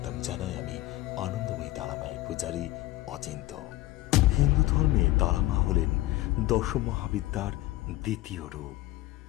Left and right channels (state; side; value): quieter; right; 17.4 dB